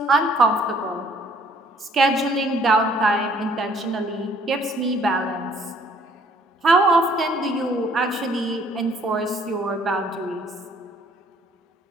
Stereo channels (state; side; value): normal; both; correlation 0.61